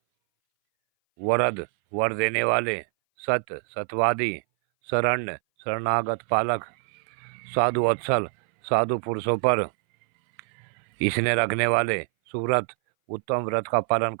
वरद, वर देने वाले, सत्य, सत्यवादी, शरण्य, शरणागत पालक, साधु वत्सल, साधु पुरुषों पर इसने रखने वाले, सुव्रत, उत्तम व्रत का पालन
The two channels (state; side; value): silent; left; 60 dB below the other